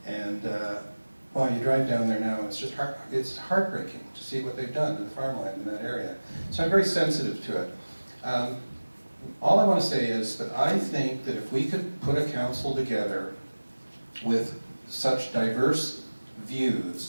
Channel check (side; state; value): both; inverted; correlation -1.00